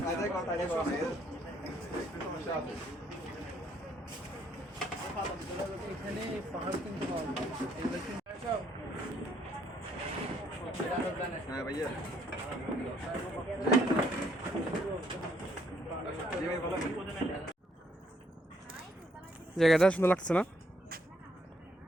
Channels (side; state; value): both; normal; correlation 0.69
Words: kontanya kok ya. এখানে পাহাড় কিন্তু পাওয়া যায়। হ্যাঁ ভাইয়া জায়গাটা সুন্দর লাগছে না?